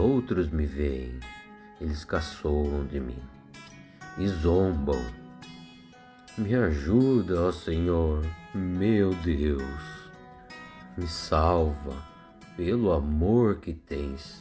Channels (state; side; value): identical; both; correlation 1.00